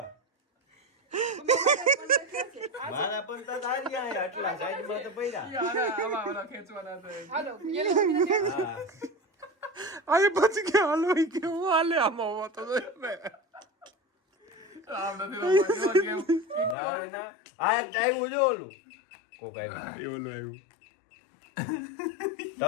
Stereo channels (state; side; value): drops out; right; at 16.8 s